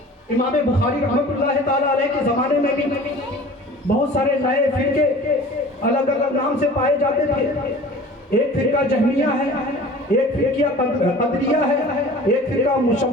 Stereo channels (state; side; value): normal; both; correlation 0.43